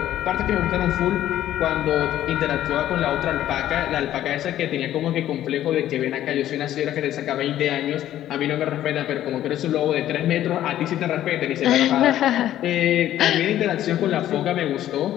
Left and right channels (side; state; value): right; quieter; 12.5 dB